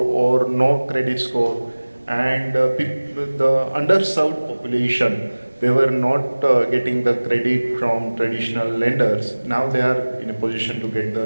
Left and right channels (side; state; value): both; inverted; correlation -1.00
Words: no credit score, and the underserved population, they were not getting the credit from traditional lenders. Now they are in a position to get the